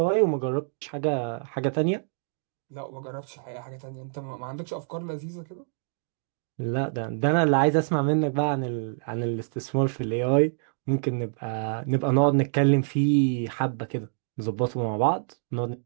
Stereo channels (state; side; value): silent; left; digital silence